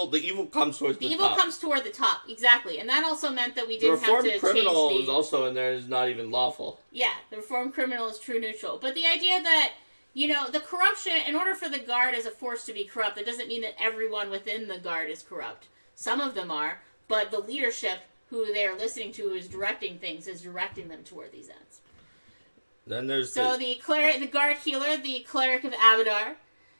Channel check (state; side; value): inverted; both; correlation -1.00